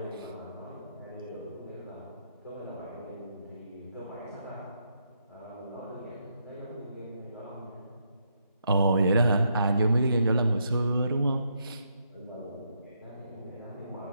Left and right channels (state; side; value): inverted; both; correlation -0.78